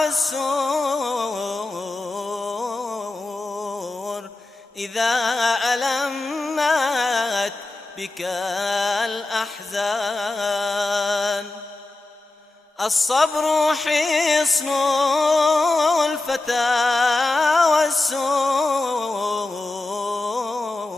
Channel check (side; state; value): right; quieter; 3.0 dB